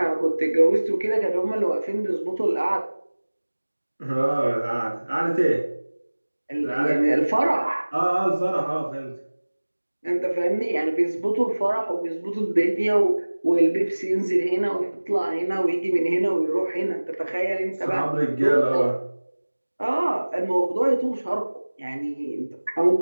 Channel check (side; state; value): both; inverted; correlation -1.00